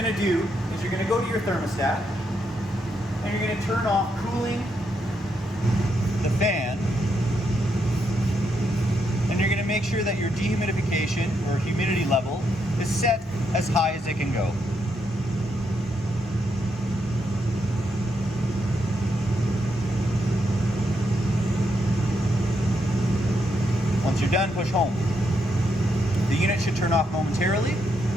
to do is you're going to go to your thermostat, and you're going to turn off cooling, the fan, and you're going to make sure that your dehumidification or humidity level is set as high as it can go. Once you're done, push home. The unit should turn off momentarily,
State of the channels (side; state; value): both; normal; correlation 0.79